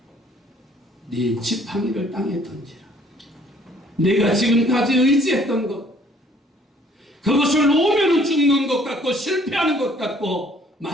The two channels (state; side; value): normal; both; correlation 0.59